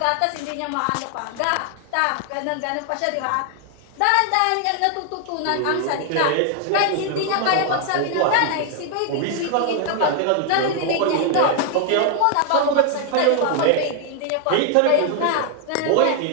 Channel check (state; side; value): different; both; correlation 0.00